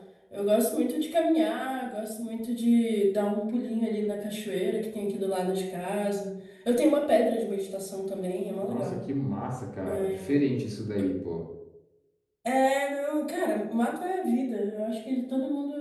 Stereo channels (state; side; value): identical; both; correlation 1.00